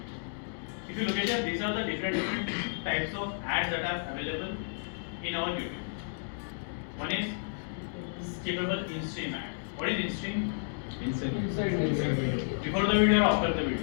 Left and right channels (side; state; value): right; silent; digital silence